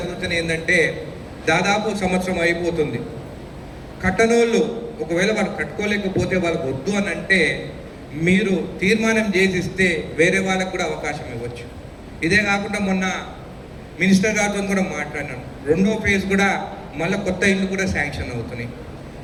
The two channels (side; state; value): both; identical; correlation 1.00